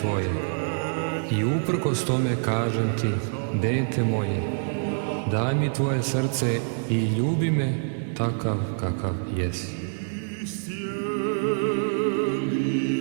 i uprkos tome kažem ti, dete moje, daj mi tvoje srce i ljubi me takav kakav jesi.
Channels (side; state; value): left; silent; digital silence